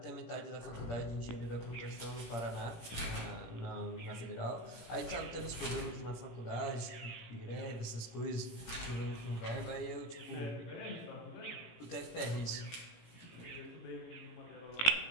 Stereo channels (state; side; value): late; right; 17 ms